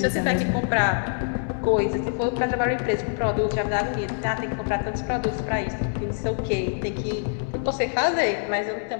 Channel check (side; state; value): right; silent; 62 dB below the other